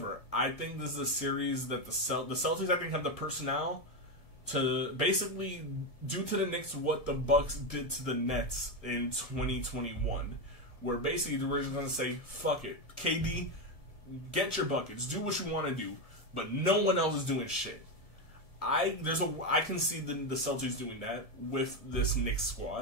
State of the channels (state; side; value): late; right; 1.7 ms